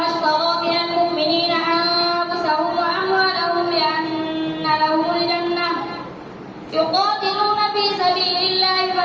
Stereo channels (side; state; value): both; identical; correlation 1.00